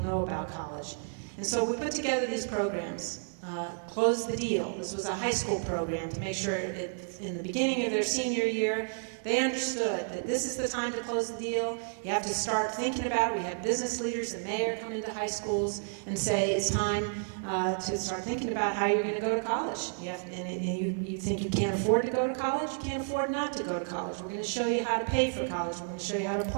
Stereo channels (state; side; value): silent; left; 55 dB below the other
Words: know about college? And so we put together these programs. Close the Deal. This was a high school program to make sure in the beginning of their senior year, they understood that this is the time to close the deal. You have to start thinking about it. We had business leaders and mayor come into high schools and say it's time to start thinking about how you're going to go to college. You think you can't afford to go to college? You can't afford not to go to college. We're going to show you how to pay for college. We're going to show you how to